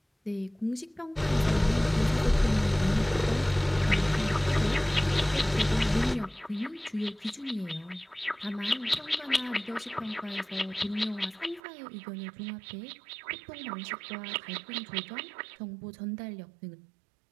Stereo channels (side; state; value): left; drops out; at 11.6 s